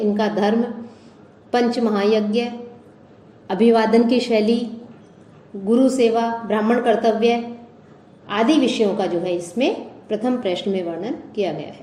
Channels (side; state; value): both; identical; correlation 1.00